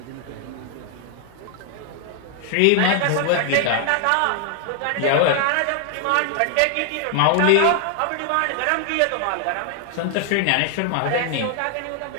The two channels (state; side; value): different; both; correlation 0.00